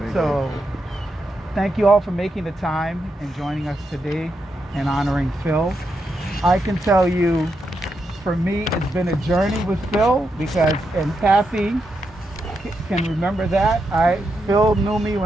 So thank you all for making the time and joining us today and honoring Phil. I can tell you, for me, it's been a journey with Phil because, and Kathy can remember that. Phil knew me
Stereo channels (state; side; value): normal; both; correlation 0.84